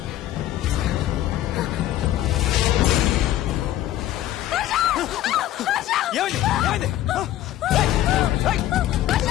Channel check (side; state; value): right; quieter; 13.3 dB